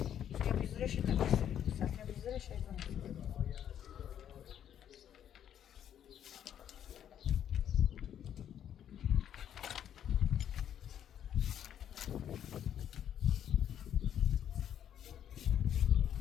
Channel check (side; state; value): right; quieter; 9.8 dB